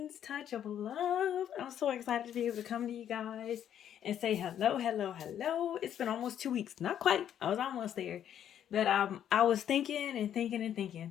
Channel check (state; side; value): quieter; right; 10.0 dB